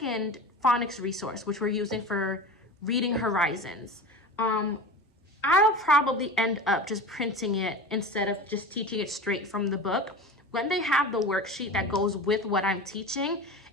phonics resource, which we're using for Reading Horizons. I'll probably end up just printing it instead of just teaching it straight from the book. When they have the worksheet that goes with what I'm teaching,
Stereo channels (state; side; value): normal; both; correlation 0.32